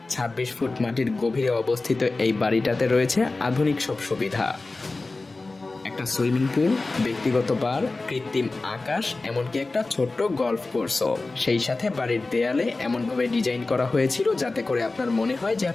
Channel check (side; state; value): right; quieter; 3.4 dB